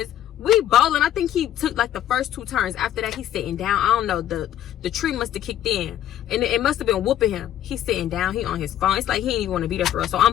we bowling. I think he took like the first 2 turns. After that, he's sitting down. I don't know, the tree must have kicked in, and it must have been whooping him. He's sitting down. He on his phone. It's like he ain't even want to be there for us. So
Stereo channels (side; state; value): right; quieter; 11.7 dB